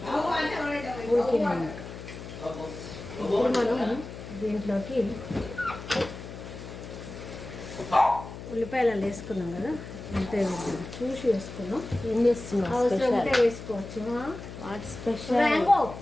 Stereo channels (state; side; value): noise; left; hum, 12 dB below the sound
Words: ఉడికినాక ఇప్పుడు మనం దీంట్లోకి ఉల్లిపాయలు వేసుకున్నాం కదా, అంతే చూసి వేసుకున్నాం. ఏం చేస్తున్నాం? అవసరం ఉంటే వేసుకోవచ్చు. What special?